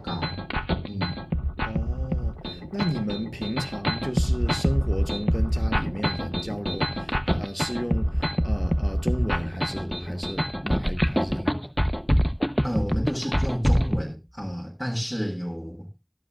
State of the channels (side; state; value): both; identical; correlation 1.00